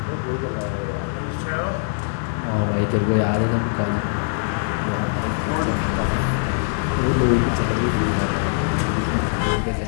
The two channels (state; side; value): silent; right; digital silence